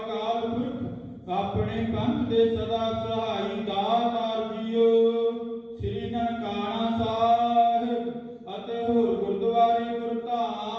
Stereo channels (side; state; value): both; identical; correlation 1.00